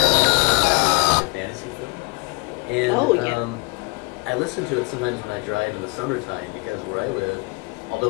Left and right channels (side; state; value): right; quieter; 29.2 dB